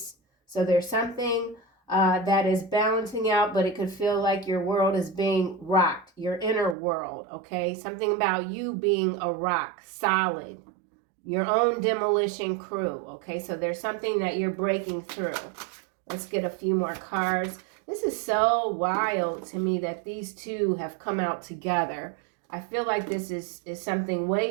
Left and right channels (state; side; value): drops out; left; at 6.8 s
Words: So there's something that is balancing out, but it could feel like your world is being rocked, your inner world, okay? Something about you being a rock, solid. Your own demolition crew, okay? So there's something that you're breaking through. Let's get a few more cards. This is so wild to me that these two have come out together. I feel like this is something